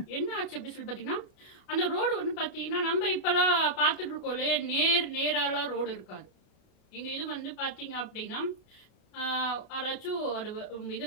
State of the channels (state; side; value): late; right; 33 ms